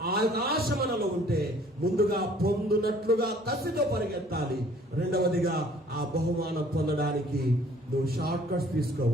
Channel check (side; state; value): both; normal; correlation 0.56